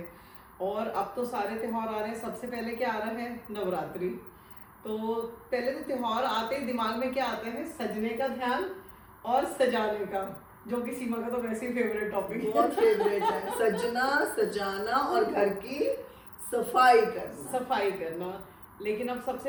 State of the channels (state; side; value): identical; both; correlation 1.00